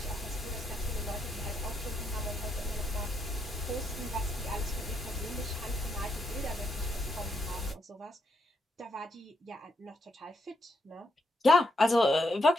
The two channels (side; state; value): both; normal; correlation 0.79